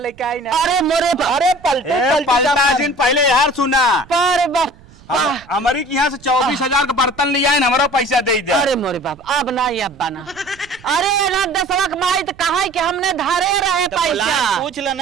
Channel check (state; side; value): noise; right; rumble, 25 dB below the sound